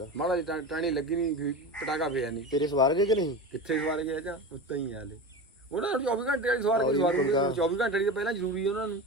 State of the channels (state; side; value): normal; both; correlation 0.27